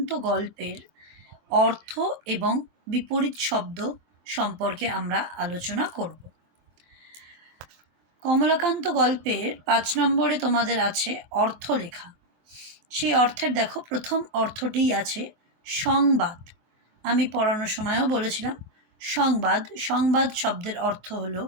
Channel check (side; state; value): left; late; 24 ms